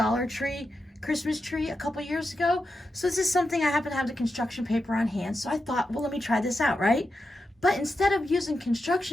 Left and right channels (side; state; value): both; normal; correlation 0.88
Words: Tree Christmas tree a couple years ago. So this is something I happen to have the construction paper on hand. So I thought, well, let me try this out, right? But instead of using